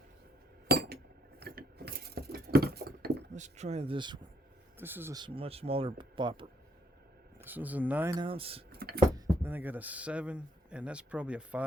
Let's try this one. This is a much smaller bopper. This was a 9 ounce. Then I got a 7, and that's probably a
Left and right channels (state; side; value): normal; both; correlation 0.70